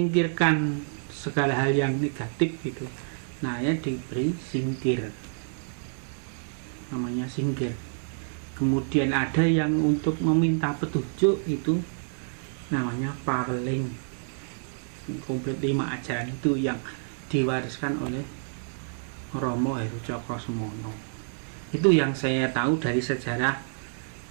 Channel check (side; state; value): left; silent; 59 dB below the other